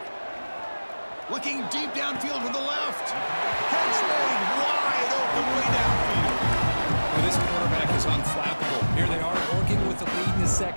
Looking deep downfield to the left. Catch made wide open way downfield. Well, this quarterback is unflappable. Here they are working with the lead in the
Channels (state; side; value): inverted; both; correlation -1.00